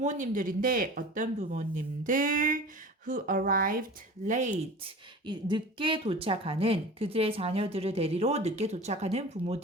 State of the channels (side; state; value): both; normal; correlation 0.37